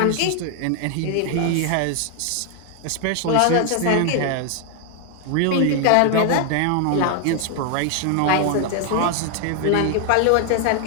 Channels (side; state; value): both; different; correlation 0.00